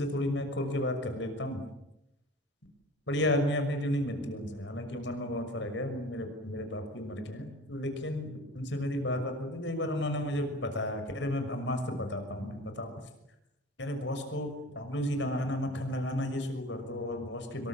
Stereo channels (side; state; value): both; normal; correlation 0.40